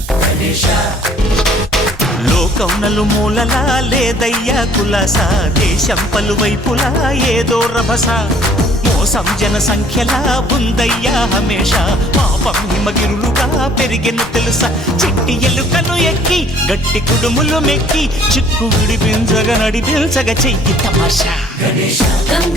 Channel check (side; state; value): both; normal; correlation 0.57